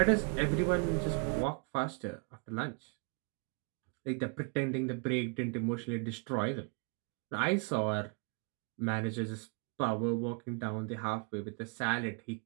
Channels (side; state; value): left; quieter; 36.4 dB